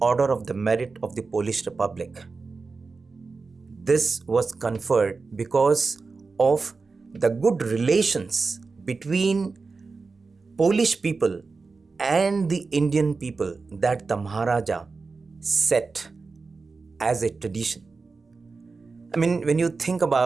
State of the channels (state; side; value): quieter; left; 4.3 dB